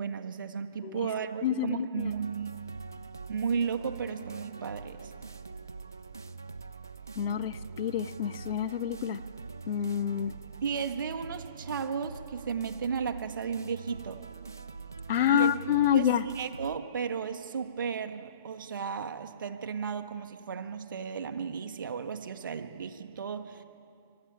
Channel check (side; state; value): both; inverted; correlation -0.48